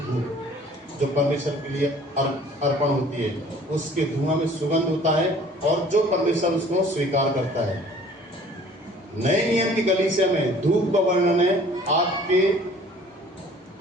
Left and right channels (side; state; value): both; normal; correlation 0.52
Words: जो परमेश्वर के लिए अर्पण होती है। उसके धुआं में सुगंध होता है और जो परमेश्वर उसको स्वीकार करता है। नए नियम की कलीसिया में धूप का वर्णन है आपके